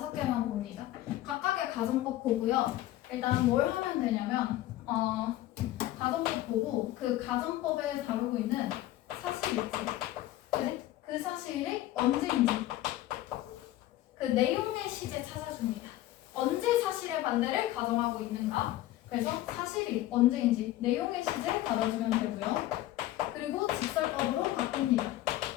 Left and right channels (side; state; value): right; quieter; 15.1 dB